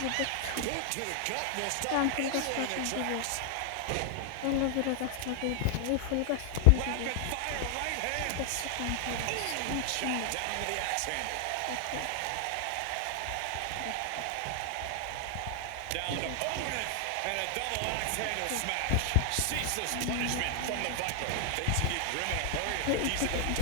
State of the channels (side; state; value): both; different; correlation 0.00